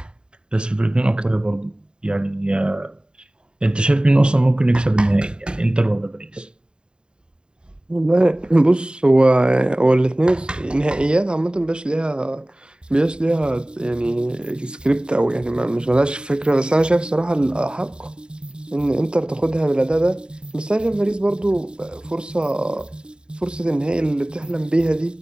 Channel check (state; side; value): late; left; 0.050 ms